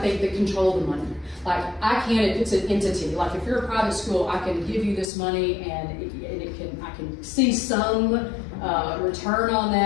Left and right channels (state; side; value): drops out; right; at 5.1 s